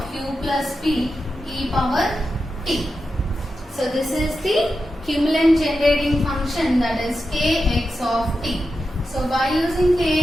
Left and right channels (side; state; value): both; normal; correlation 0.90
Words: q plus p e power t. So this is the Kimlen generating function, that is kx of t. So by using